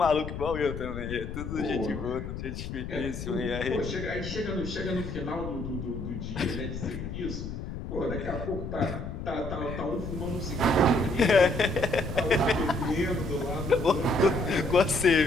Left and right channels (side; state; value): left; noise; rumble, 7 dB below the sound